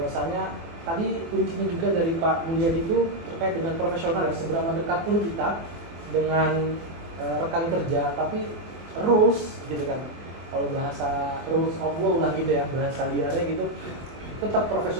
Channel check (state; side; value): late; left; 24 ms